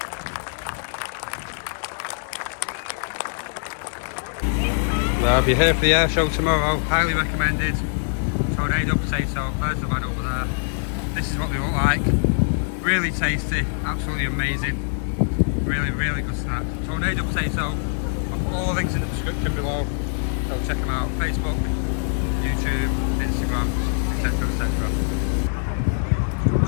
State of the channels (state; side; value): silent; right; digital silence